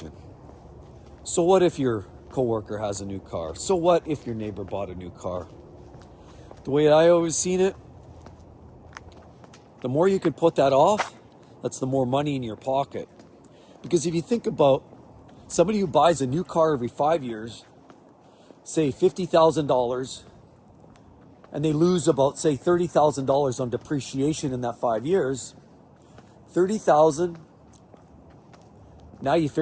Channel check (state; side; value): identical; both; correlation 1.00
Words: So what if your coworker has a new car? So what if your neighbor bought a new car? The way I always seen it, the more you can put that off, that's the more money in your pocket. Because if you think about somebody who buys a new car every 5 years, say $50,000, and they lose about, say, $30,000 on depreciation in that 5 years, $30,000, now you